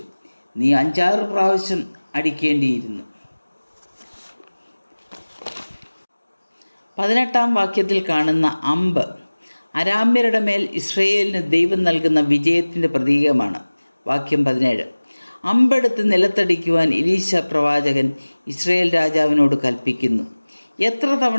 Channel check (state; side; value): inverted; both; correlation -1.00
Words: നീ 5-6 പ്രാവശ്യം അടിക്കേണ്ടിയിരുന്നു. 18 വാക്യത്തിൽ കാണുന്ന അമ്പ് അരാമ്യരുടെ മേൽ ഇസ്രായേലിന് ദൈവം നൽകുന്ന വിജയത്തിൻ്റെ പ്രതീകമാണ്. വാക്യം 17. അമ്പെടുത്ത് നിലത്തടിക്കുവാൻ എലീശ പ്രവാചകൻ ഇസ്രായേൽ രാജാവിനോട് കൽപ്പിക്കുന്നു. എത്ര